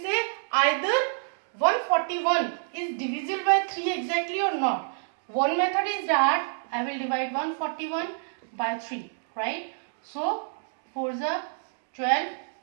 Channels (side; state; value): left; silent; digital silence